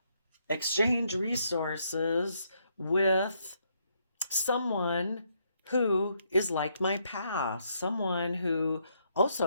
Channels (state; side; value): inverted; both; correlation -0.74